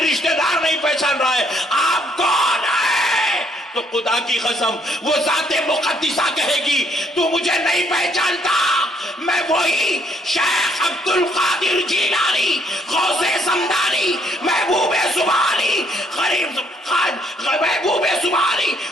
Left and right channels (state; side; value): normal; both; correlation 0.69